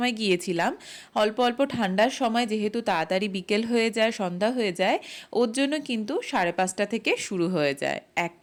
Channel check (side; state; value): both; identical; correlation 1.00